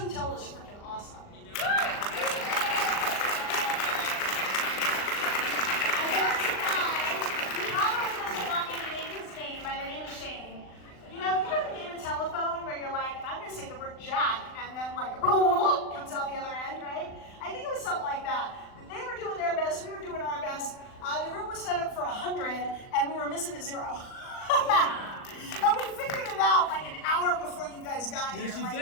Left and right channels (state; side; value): late; right; 39 ms